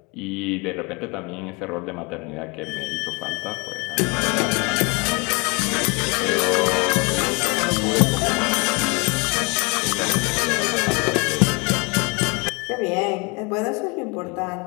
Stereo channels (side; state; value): right; quieter; 29.9 dB